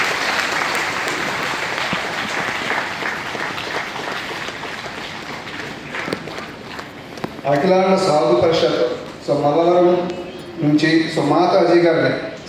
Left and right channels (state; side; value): identical; both; correlation 1.00